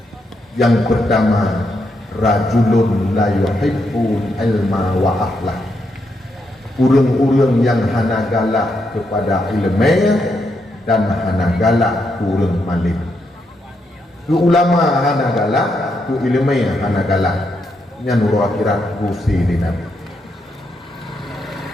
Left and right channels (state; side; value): normal; both; correlation 0.80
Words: yang pertama rajulun la yuhibbu ilma wa akhlak. Urang-urang yang hana galak kepada ilmu dan hana galak urang malim. Tu ulama hana galak, tu ilmu hana galak. Yang nuru akhirat gusi di Nabi.